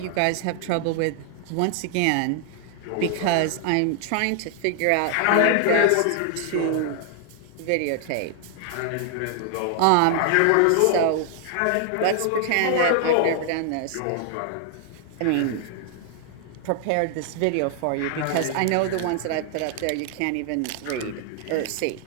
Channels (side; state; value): both; different; correlation 0.00